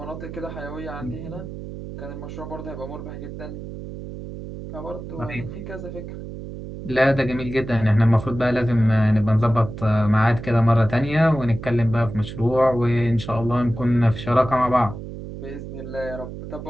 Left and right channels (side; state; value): right; noise; hum, 10 dB below the sound